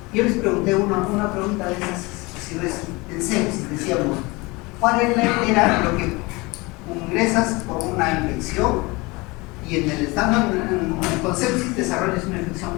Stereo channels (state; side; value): quieter; right; 24.3 dB